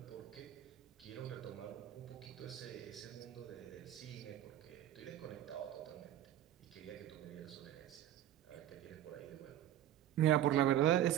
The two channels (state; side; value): quieter; left; 12.2 dB